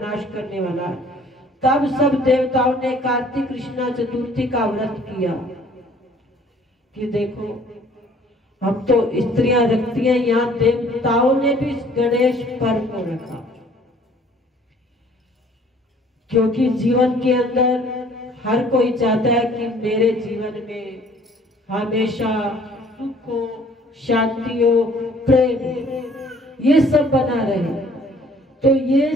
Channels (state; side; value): normal; both; correlation 0.56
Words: करने वाला है। तब सब देवताओं ने कार्तिक कृष्णा चतुर्थी का व्रत किया। कि देखो, हम तो स्त्रियां रखती हैं, यहाँ देवताओं ने भी गणेश पर्व को रखा, क्योंकि जीवन के अंदर हर कोई चाहता है कि मेरे जीवन में हमेशा सुख हो, शांति हो, प्रेम, ये सब बना रहे। तो ये